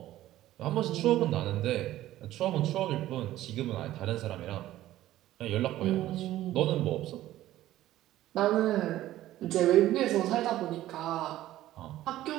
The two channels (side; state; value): left; quieter; 14.4 dB